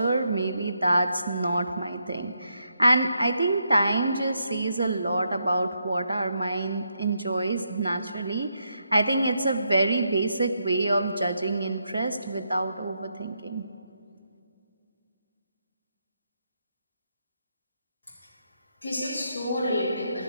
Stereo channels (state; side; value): inverted; both; correlation -0.80